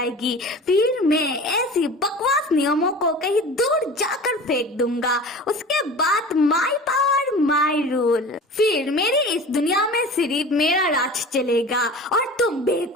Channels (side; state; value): both; normal; correlation 0.38